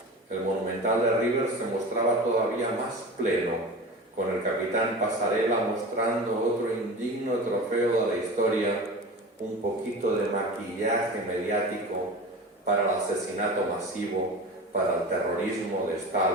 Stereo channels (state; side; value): normal; both; correlation 0.33